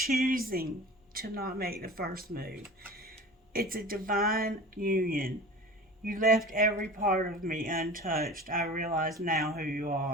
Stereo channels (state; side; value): normal; both; correlation 0.37